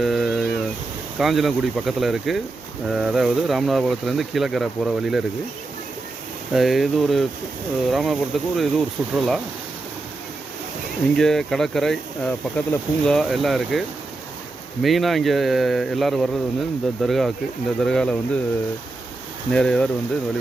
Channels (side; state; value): left; quieter; 3.1 dB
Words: காஞ்சனங்குடி பக்கத்தில் இருக்குது. அதாவது ராமநாதபுரத்துலேருந்து கீழக்கரை போகிற வழியில் இருக்குது. இது ஒரு ராமநாதபுரத்துக்கு ஒரு சுற்றுலா. இங்கே கடற்கரை பக்கத்தில் பூங்கா எல்லாம் இருக்குது. மெயினாக இங்கே எல்லோரும் வர்றது வந்து இந்த தர்காவுக்கு. இந்த தர்காவில் வந்து நிறைய பேர் வந்து